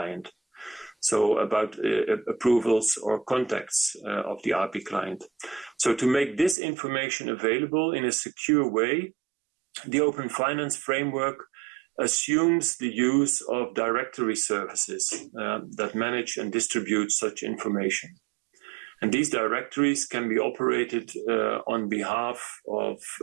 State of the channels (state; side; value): drops out; left; at 6.6 s